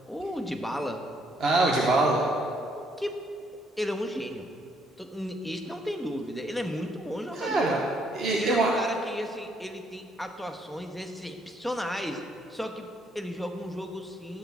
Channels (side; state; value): both; normal; correlation 0.70